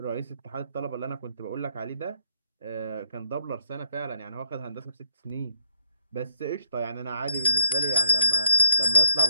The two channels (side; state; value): both; inverted; correlation -0.65